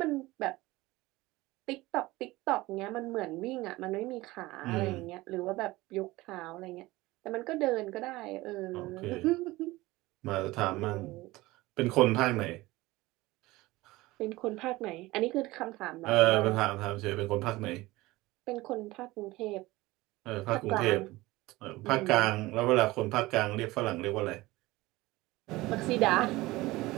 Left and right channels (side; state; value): left; quieter; 19.6 dB